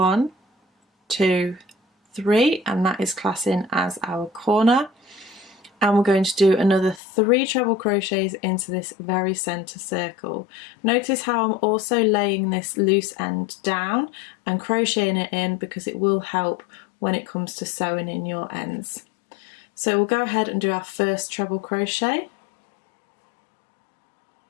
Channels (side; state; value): right; drops out; at 7.0 s